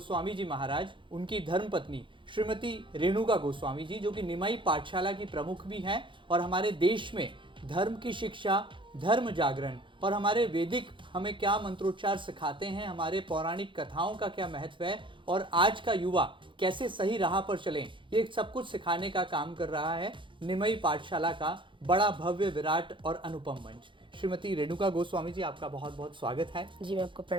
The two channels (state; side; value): late; left; 0.24 ms